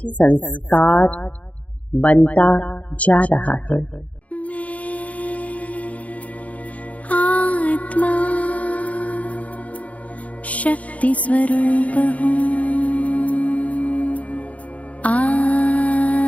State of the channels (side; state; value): right; late; 0.068 ms